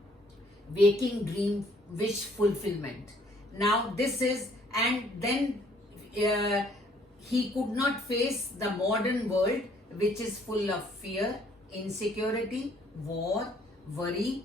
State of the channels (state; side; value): normal; both; correlation 0.62